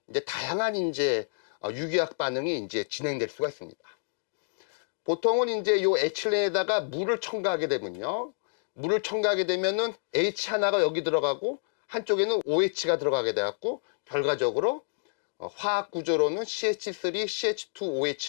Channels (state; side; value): silent; right; digital silence